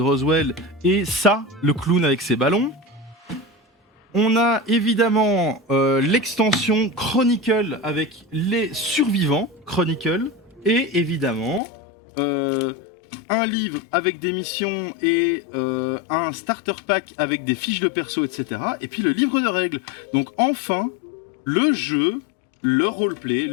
Roswell et ça, le clown avec ses ballons. On a évidemment l'extension Chronicle avec les survivants Chronicle et évidemment un livre avec des missions et un starter pack avec des fiches de perso, etc. Et puis le livre de règles. Donc enfin, le jeu, le roleplay,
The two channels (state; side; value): drops out; right; at 11.6 s